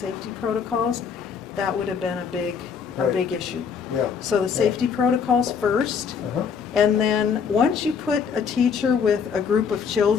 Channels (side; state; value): right; quieter; 6.5 dB